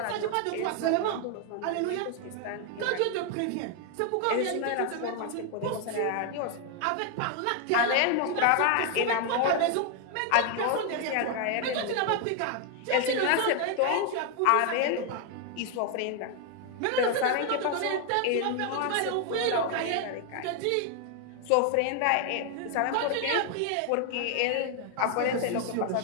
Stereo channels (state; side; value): different; both; correlation 0.00